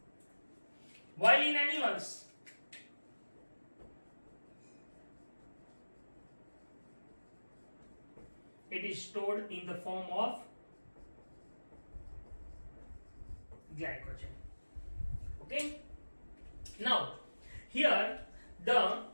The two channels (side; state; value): both; inverted; correlation -1.00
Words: while in animals it is stored in the form of glycogen. Okay, now here the